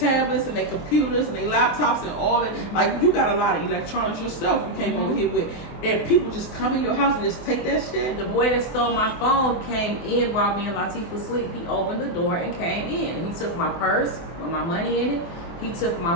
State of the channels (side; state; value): right; late; 24 ms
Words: and their computers and their laptops and all that. Like, you got a lot of electronics yourself you came over here with. And people just come in your house and just take that shit. The boy that stole my phone came in while me and Latif was asleep. He opened the door and came in. He took my purse with my money in it. He took